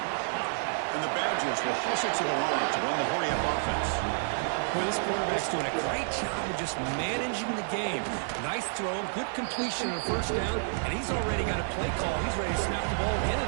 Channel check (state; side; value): silent; left; digital silence